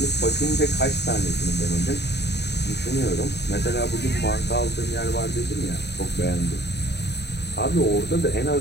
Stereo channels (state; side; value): late; right; 0.49 ms